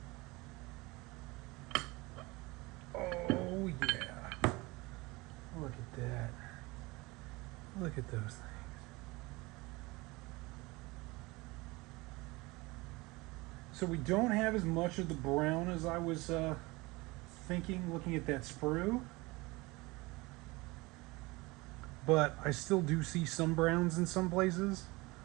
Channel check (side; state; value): left; quieter; 23.2 dB